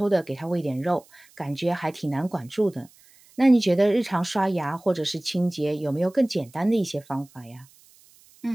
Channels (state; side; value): noise; right; hiss, 28 dB below the sound